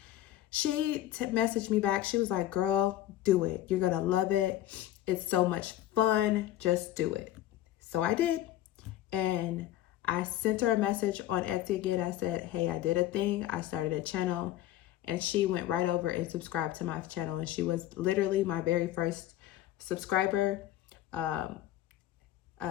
she messaged me back. She was like, girl, do it. You're going to love it. It's so much fun. Just do it. So I did. And I sent her a message on Etsy again. I said, hey, I did a thing. I started a channel. And she went right over and subscribed to my channel. And she was literally my very first subscriber.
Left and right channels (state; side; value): quieter; right; 13.6 dB